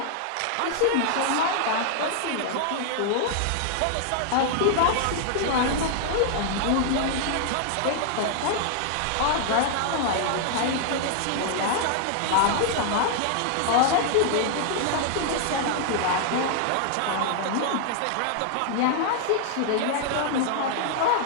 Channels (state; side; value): different; both; correlation 0.00